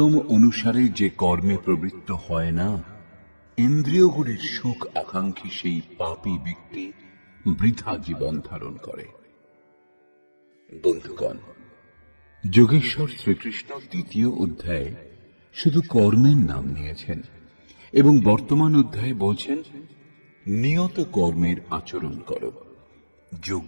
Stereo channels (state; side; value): inverted; both; correlation -1.00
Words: অনুসারে যে কর্মে প্রবৃত্ত হয় না, ইন্দ্রিয়গুলির সুখ আকাঙ্ক্ষী সেই পাপী ব্যক্তি বৃথা জীবন ধারণ করে। বন্ধুগণ, যোগেশ্বর শ্রীকৃষ্ণ ৩য় অধ্যায়ে শুধু কর্মের নাম নিয়েছেন এবং বর্তমান অধ্যায়ে বলছেন নিয়ত কর্মের আচরণ করো।